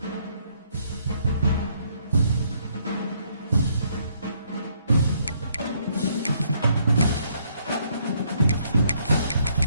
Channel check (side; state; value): both; inverted; correlation -0.69